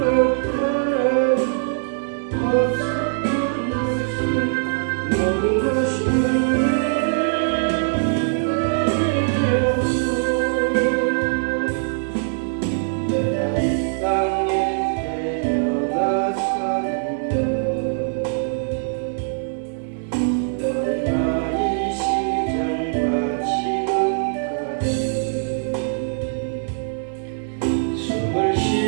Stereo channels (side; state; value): left; silent; digital silence